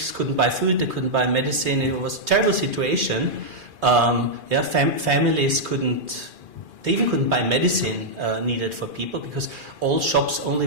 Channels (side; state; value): left; late; 3.2 ms